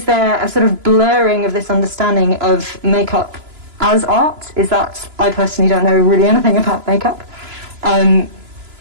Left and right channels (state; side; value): late; left; 3.0 ms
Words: there a sort of blurring of this understanding of makeup as art? Is that, I personally don't know really anything about makeup.